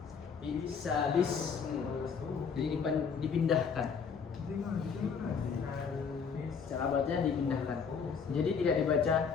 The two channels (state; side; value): quieter; right; 6.1 dB